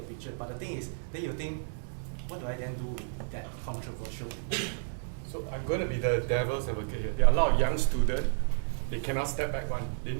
picture. But the thing is, then you think, what do I then do with that controversial picture? So I'm going to be the devil's advocate here. There are a lot of young students, they cannot step back one. They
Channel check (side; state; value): left; silent; digital silence